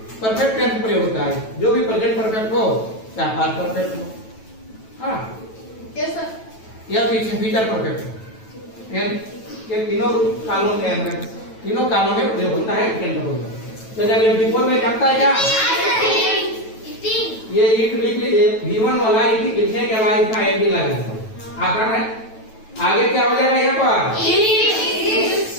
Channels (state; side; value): late; right; 9.1 ms